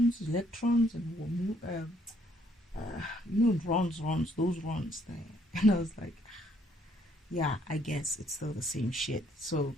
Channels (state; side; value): normal; both; correlation 0.67